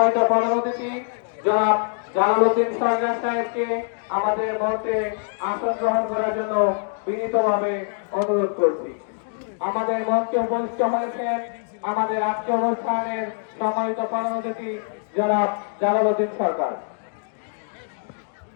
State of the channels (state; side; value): silent; right; digital silence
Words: প্রধান অতিথি জনাব জালালউদ্দিন সরকার সাহেবকে আমাদের মঞ্চে আসন গ্রহণ করার জন্য বিনীতভাবে অনুরোধ করছি। আমাদের মঞ্চে উপস্থিত হয়েছেন আমাদের আজকের অনুষ্ঠানের সম্মানিত প্রধান অতিথি জনাব জালালউদ্দিন সরকার।